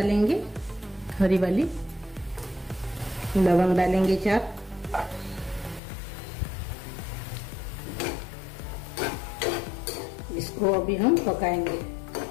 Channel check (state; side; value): drops out; right; at 5.8 s